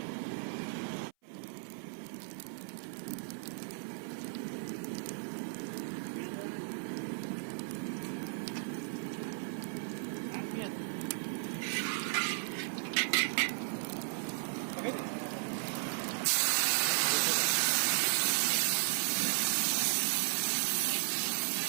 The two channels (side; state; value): left; silent; 54 dB below the other